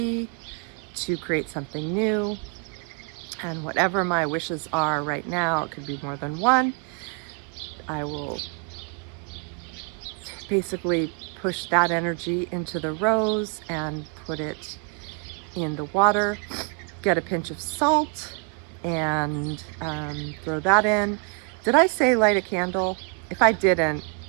to create something new, and whatever my wishes are right now, it could be more than one, I will basically push that energy into the rose and put it in the water, get a pinch of salt, and throw that in. Did I say light a candle? If I didn't,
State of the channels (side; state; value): left; quieter; 34.9 dB